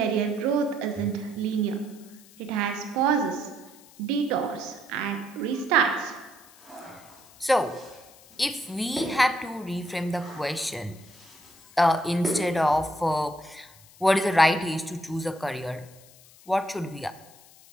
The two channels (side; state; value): left; noise; hiss, 24 dB below the sound